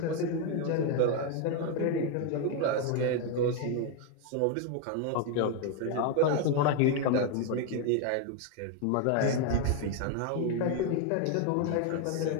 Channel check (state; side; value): different; both; correlation 0.01